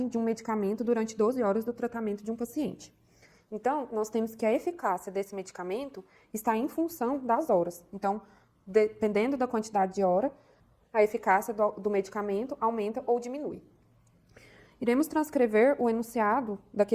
de um medicamento durante 12 horas do tratamento de um paciente. Então, nós temos que a eficácia desse medicamento está em função das horas. Então, dependendo da quantidade de hora, a eficácia do medicamento aumenta ou diminui. Iremos transcrever o enunciado da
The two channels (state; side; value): identical; both; correlation 1.00